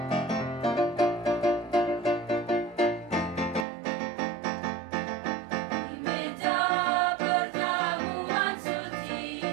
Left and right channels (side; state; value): left; drops out; at 3.7 s